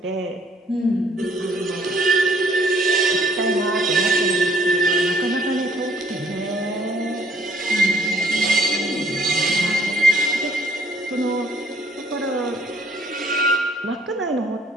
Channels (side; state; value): both; normal; correlation 0.62